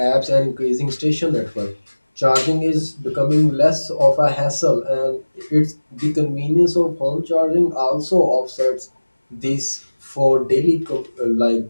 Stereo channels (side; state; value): both; inverted; correlation -1.00